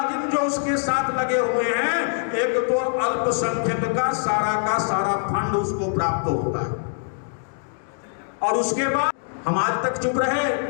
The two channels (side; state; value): right; silent; 63 dB below the other